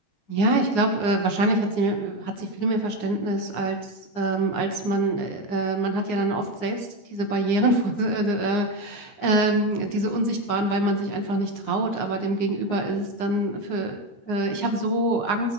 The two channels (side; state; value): right; late; 9.7 ms